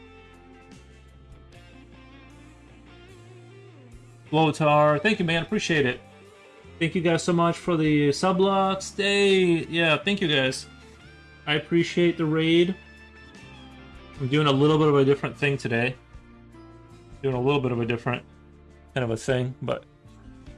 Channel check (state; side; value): identical; both; correlation 1.00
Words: Lothar, thank you, man. Appreciate it. Thank you guys so much for the sublocks. Yeah, thank you guys. I appreciate the raid. I'm doing a little bit of a different thing today. Doing a little bit of a different kind of a thing, but.